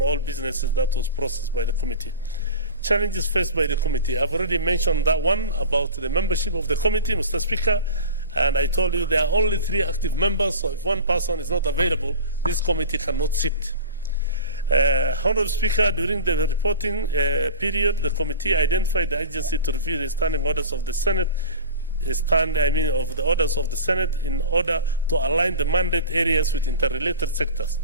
all businesses that was processed by the committee. Challenges faced by the committee. I've already mentioned that one about the membership of the committee, Mr. Speaker, and I told you there are only 3 active members, so if one person is not available, this committee cannot sit. Honorable Speaker, during the reporting period, the committee identified the agency to review the standing orders of the Senate, of the orders of the Senate in order to align the mandate areas with interrelated sectors.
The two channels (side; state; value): both; inverted; correlation -0.34